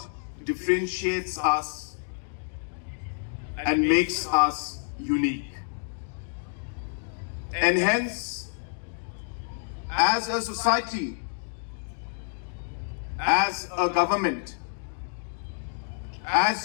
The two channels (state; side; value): silent; right; digital silence